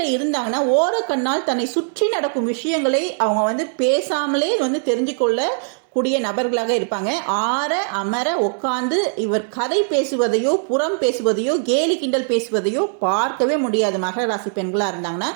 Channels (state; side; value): silent; left; 66 dB below the other